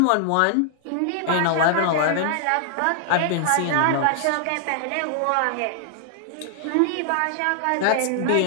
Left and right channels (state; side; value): different; both; correlation 0.00